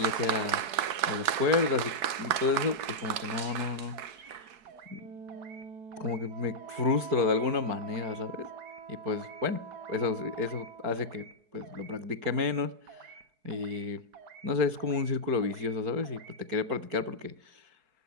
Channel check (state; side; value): late; left; 4.7 ms